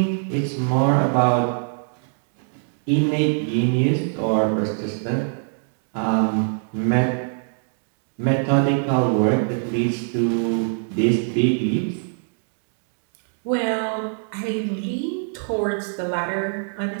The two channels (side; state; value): left; silent; digital silence